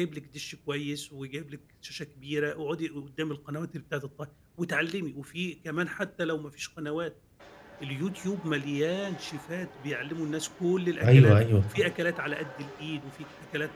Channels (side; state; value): both; identical; correlation 1.00